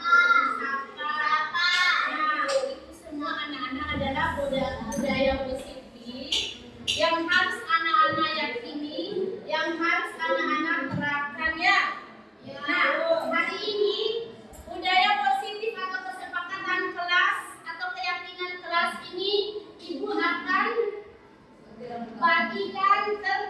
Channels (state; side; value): identical; both; correlation 1.00